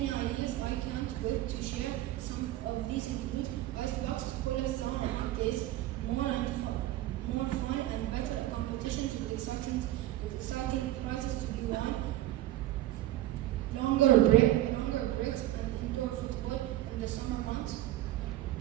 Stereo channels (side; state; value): left; quieter; 15.0 dB